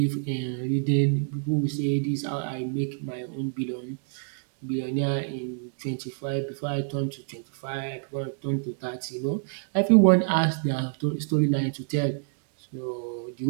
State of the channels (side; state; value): left; silent; 59 dB below the other